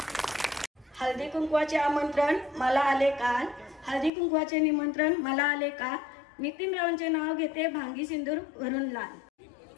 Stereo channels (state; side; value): drops out; right; at 4.1 s